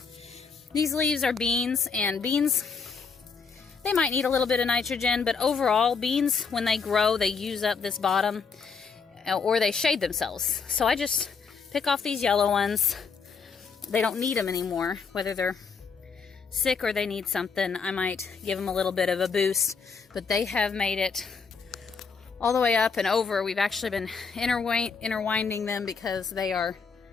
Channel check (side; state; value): right; quieter; 5.4 dB